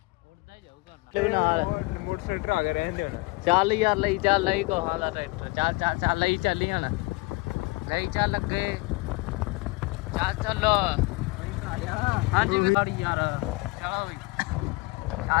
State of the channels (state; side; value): quieter; right; 24.5 dB